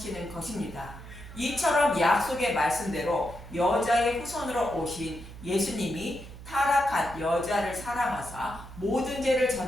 것입니다. 이처럼 약속의 말씀대로 여자의 후손으로 오신 예수님이 타락한 여자를 사랑하사 모든 죄를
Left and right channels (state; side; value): noise; right; hum, 15 dB below the sound